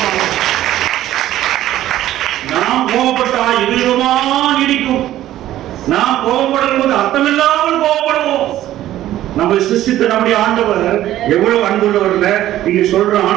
நாம் கோபப்பட்டா எதிரமா நீடிக்க நாம் கோபப்படும் போது அர்த்தமில்லாமல் கோபப்படுவோம். நம்ம சிருஷ்டித்த நம்முடைய ஆண்டவர் எவ்வளவு அன்புள்ளவர்ல நீங்க சொல்ற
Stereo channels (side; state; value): left; quieter; 13.5 dB